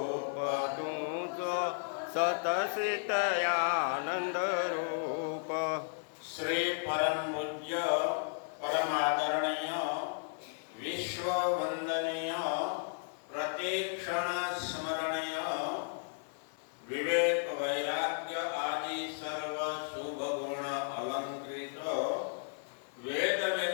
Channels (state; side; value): silent; right; digital silence